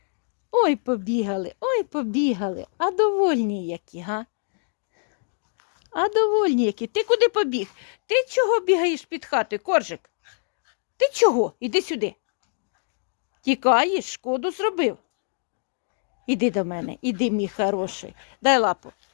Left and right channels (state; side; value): silent; right; 62 dB below the other